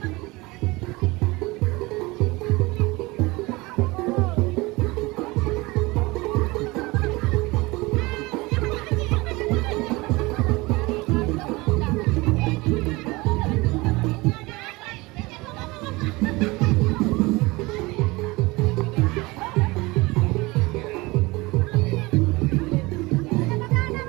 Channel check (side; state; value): left; quieter; 22.8 dB